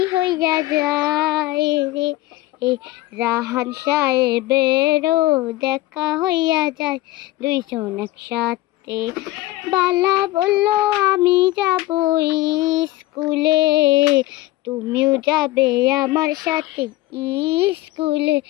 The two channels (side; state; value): right; quieter; 17.7 dB